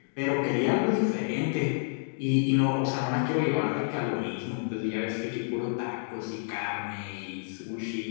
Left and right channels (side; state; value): right; silent; digital silence